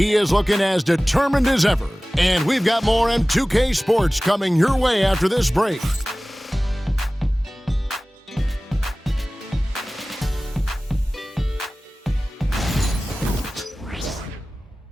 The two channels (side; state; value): both; normal; correlation 0.98